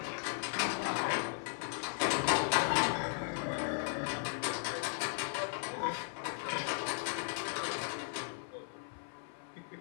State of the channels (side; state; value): right; silent; 53 dB below the other